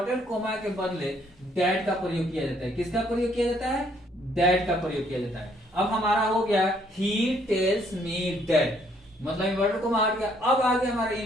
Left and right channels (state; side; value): normal; both; correlation 0.66